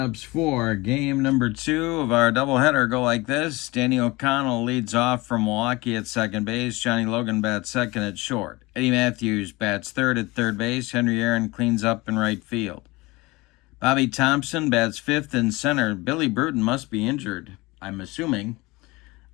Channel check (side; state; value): right; quieter; 22.4 dB